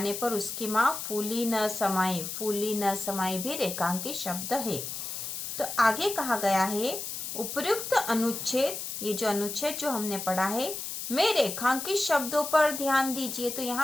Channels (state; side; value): noise; left; hiss, 6 dB below the sound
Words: पर उसकी माँ फूली न समाई भी रेखांकित शब्द है। तो आगे कहा गया है, उपयुक्त अनुच्छेद, ये जो अनुच्छेद जो हमने पढ़ा है, में रेखांकित शब्दों पर ध्यान दीजिए। तो